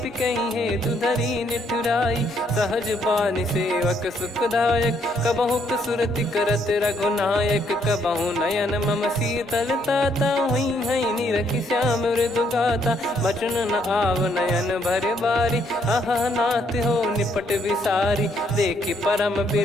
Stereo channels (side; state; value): both; normal; correlation 0.71